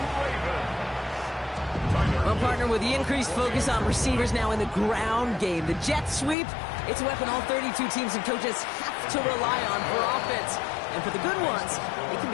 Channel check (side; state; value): right; drops out; at 6.4 s